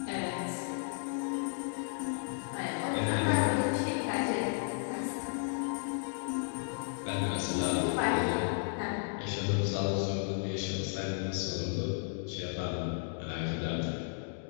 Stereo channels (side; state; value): right; silent; digital silence